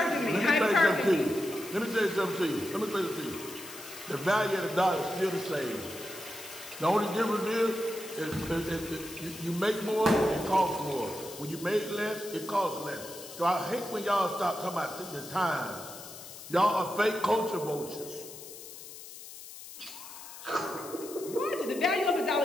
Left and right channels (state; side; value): noise; left; hiss, 14 dB below the sound